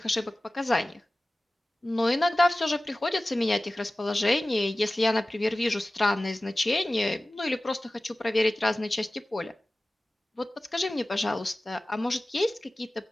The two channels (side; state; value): both; normal; correlation 0.97